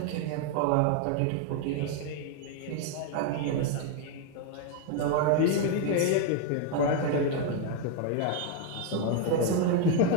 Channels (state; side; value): different; both; correlation 0.01